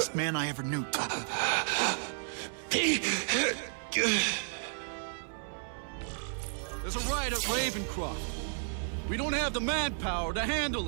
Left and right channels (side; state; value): left; silent; 56 dB below the other